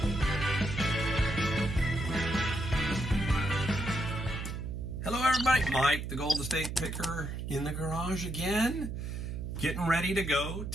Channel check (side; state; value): right; noise; hum, 5 dB below the sound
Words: Hello everybody, Mike the Golden State Picker in the garage again, getting ready to go